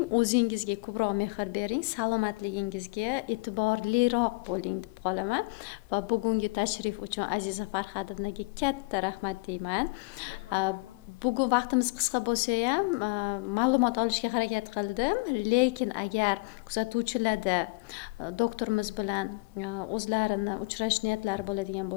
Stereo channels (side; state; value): right; quieter; 28.1 dB